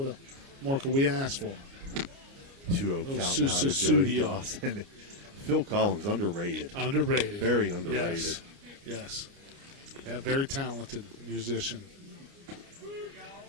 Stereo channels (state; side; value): late; left; 29 ms